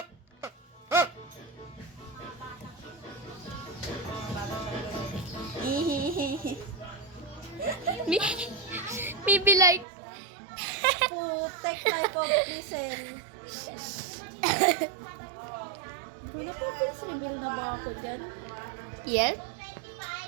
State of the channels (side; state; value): left; drops out; at 9.9 s